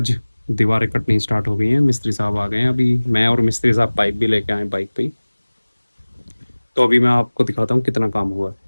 दीवारें कटनी स्टार्ट हो गई हैं, मिस्त्री साहब आ गए हैं। अभी मैं और मिस्त्री साहब पाइप भी लेके आए बाइक पे ही। तो अभी मैं आपको दिखाता हूँ कितना काम हुआ है।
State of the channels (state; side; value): inverted; both; correlation -1.00